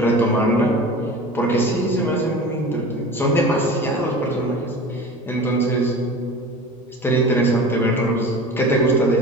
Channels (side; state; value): both; normal; correlation 0.36